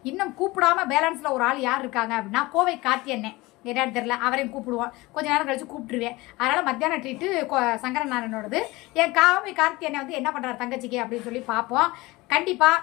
இன்னும் கூப்பிடாம பேலன்ஸில் ஒரு ஆள் யார் இருக்காங்க அப்படின்னா, கோவை கார்த்தி அண்ணன். என்னன்னு தெரியல, அவரையும் கூப்பிடுவோம், கொஞ்ச நேரம் கழிச்சு கூப்பிட்டுருவேன். அதனால் மத்தியானம் ட்ரீட்டு சங்கரநாராயணோடது. என் கோவை கார்த்தி அண்ணன் வந்து என்ன பண்ணுறாரு தங்கச்சிக்கு அப்படின்னு சொல்லி பார்ப்போம்.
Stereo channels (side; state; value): right; quieter; 21.4 dB